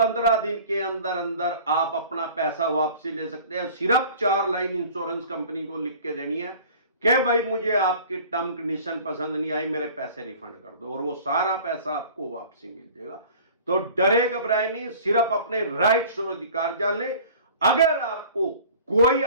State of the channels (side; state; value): both; inverted; correlation -0.45